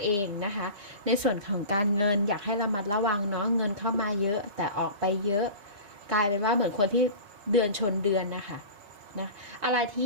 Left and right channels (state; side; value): late; left; 5.0 ms